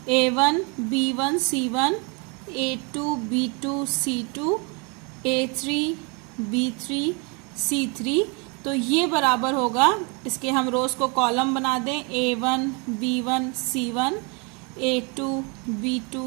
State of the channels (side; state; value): left; quieter; 32.2 dB